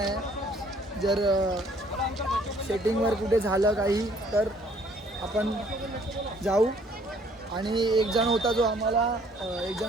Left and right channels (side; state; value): both; normal; correlation 0.60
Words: जर सेटिंगवर कुठे झालं काही तर आपण जाऊ. आणि एक जण होता जो